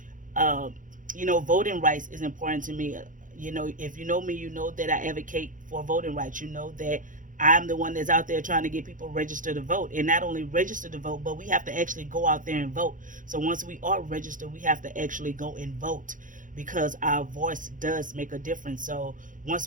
Voting rights is important to me. If you know me, you know that I advocate for voting rights. You know that I'm the one that's out there trying to get people registered to vote, and not only register to vote, but we have to actually go out there and vote. So once we are registered, we have to actually go and vote because our voice does make a difference. So once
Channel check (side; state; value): left; late; 0.38 ms